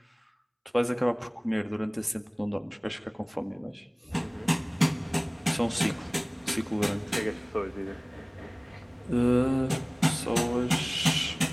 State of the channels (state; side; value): identical; both; correlation 1.00